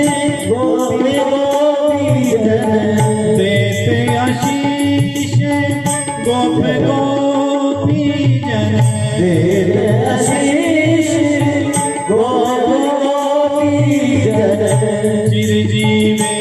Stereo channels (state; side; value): identical; both; correlation 1.00